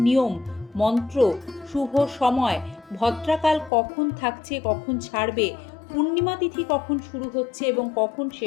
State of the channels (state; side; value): drops out; right; at 3.7 s